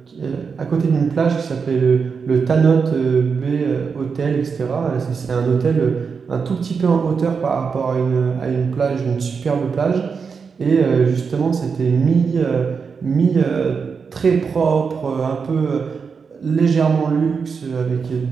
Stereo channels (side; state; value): left; quieter; 5.6 dB